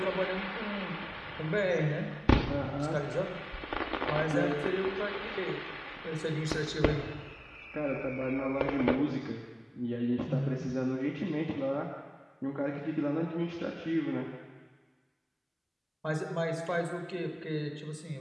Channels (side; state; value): both; identical; correlation 1.00